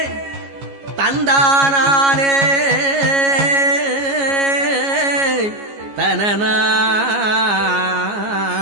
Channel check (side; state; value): left; late; 15 ms